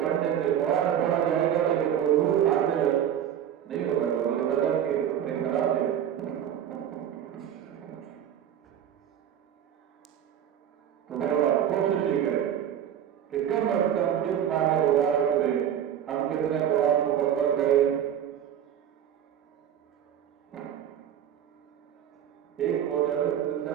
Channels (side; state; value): left; quieter; 9.8 dB